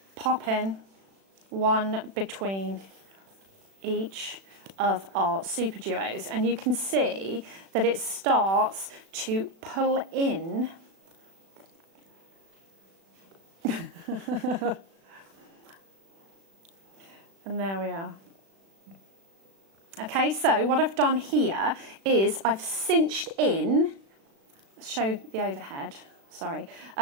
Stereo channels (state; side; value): late; left; 36 ms